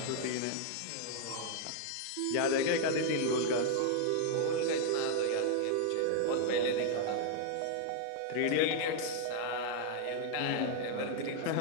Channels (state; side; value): different; both; correlation 0.00